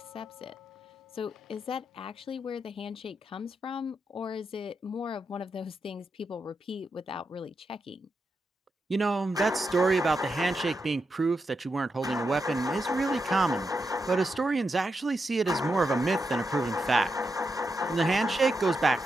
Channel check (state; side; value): normal; both; correlation 0.86